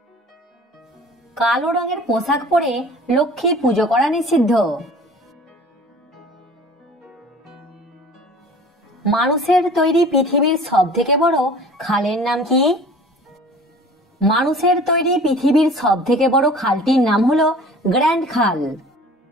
কালো রঙের পোশাক পরে লক্ষ্মী পুজো করা নিষিদ্ধ। মানুষের তৈরি পৃথিবীর সবথেকে বড় খালের নাম কি? মানুষের তৈরি পৃথিবীর সবথেকে বড় খালটির নাম হলো গ্র্যান্ড খাল।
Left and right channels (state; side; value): normal; both; correlation 0.44